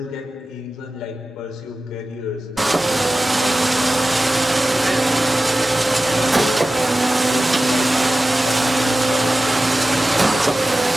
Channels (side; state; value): both; normal; correlation 0.95